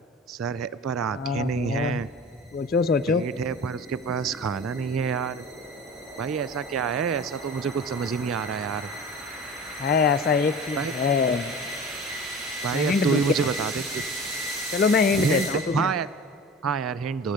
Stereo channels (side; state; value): both; normal; correlation 0.37